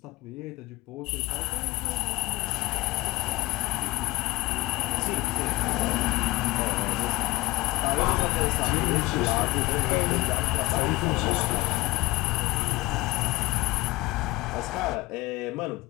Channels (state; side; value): quieter; right; 20.6 dB